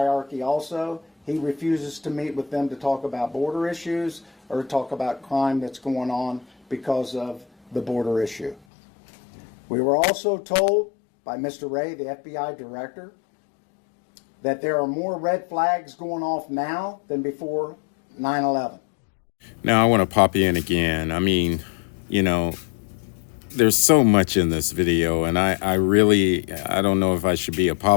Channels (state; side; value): drops out; right; at 8.6 s